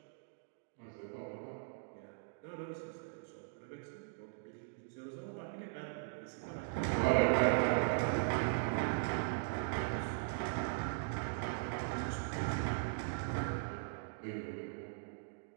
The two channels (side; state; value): left; silent; digital silence